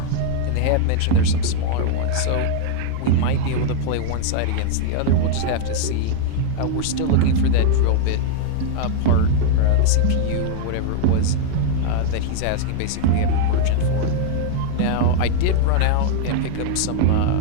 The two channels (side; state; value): both; different; correlation 0.00